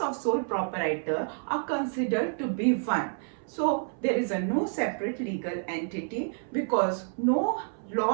of sole proprietor are considered to be one. So there is a no separate legal entity because no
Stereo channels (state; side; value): silent; left; 59 dB below the other